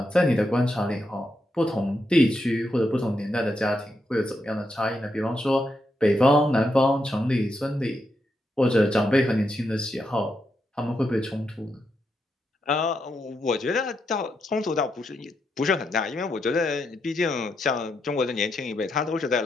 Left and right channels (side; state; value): both; normal; correlation 0.82